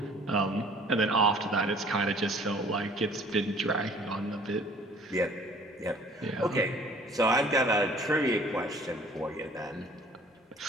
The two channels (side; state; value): both; normal; correlation 0.53